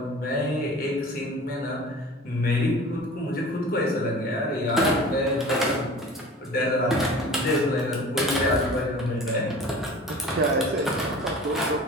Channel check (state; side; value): normal; both; correlation 0.41